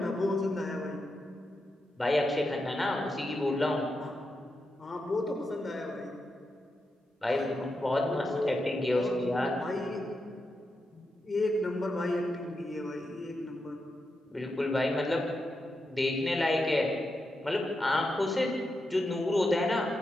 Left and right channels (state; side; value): normal; both; correlation 0.86